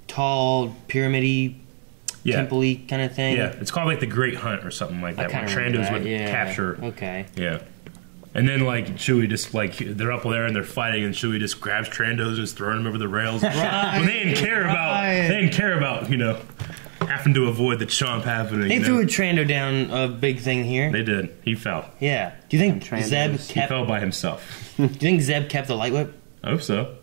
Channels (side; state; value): left; silent; digital silence